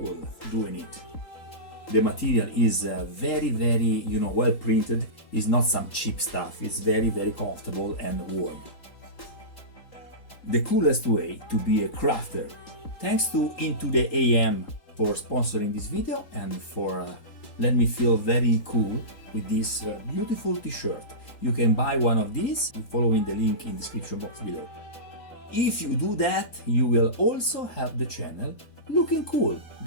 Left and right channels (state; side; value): late; right; 3.8 ms